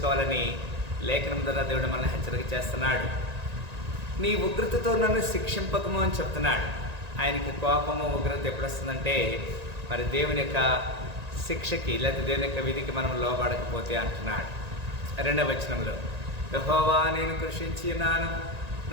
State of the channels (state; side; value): late; left; 1.9 ms